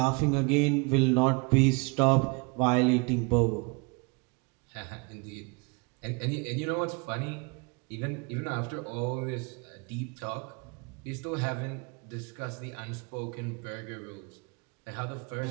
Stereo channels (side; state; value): left; quieter; 30.0 dB